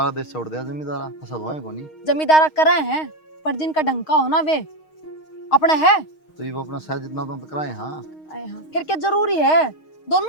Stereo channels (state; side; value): late; right; 6.4 ms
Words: देश छोड़ दिया जमींदारा फसल होए को नहीं। जमींदारा करे हैं पर जिनका ढंका हो ना वे अपने है। तो ये वो अपना सह जितना तो कराए। हाँ आए हाँ फिर क्या जरूरी है,